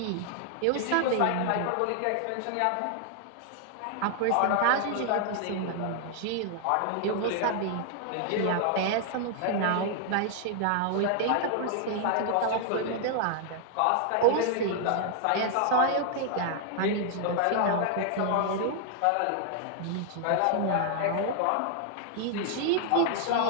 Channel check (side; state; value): both; different; correlation 0.00